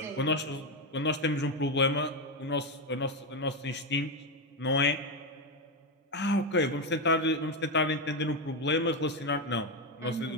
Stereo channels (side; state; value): both; normal; correlation 0.09